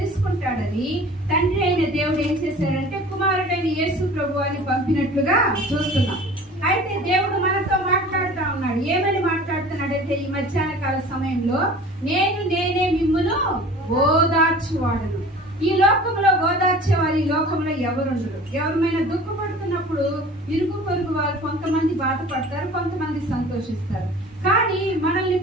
తండ్రి అయిన దేవుడు ఏం చేశారంటే కుమారుడైన యేసు ప్రభు వారిని పంపినట్లుగా చూస్తున్నాం. అయితే దేవుడు మనతో మాట్లాడుతూ ఉన్నాడు. ఏమని మాట్లాడుతున్నాడంటే ఈ మధ్యాహ్న కాల సమయంలో నేనే మిమ్మును ఓదార్చువాడను. ఈ లోకంలో ఓదార్చేవారు ఈ లోకంలో ఎవరుండరు. ఎవరిమైనా దుఃఖపడుతున్నప్పుడు ఇరుగు పొరుగు వారు కొంతమంది బాధపడతారు, కొంతమంది సంతోషిస్తారు. కానీ మనల్ని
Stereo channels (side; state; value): both; normal; correlation 0.43